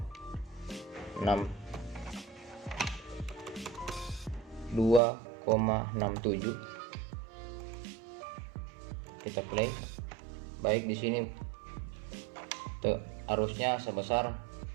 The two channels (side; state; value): left; drops out; at 5.0 s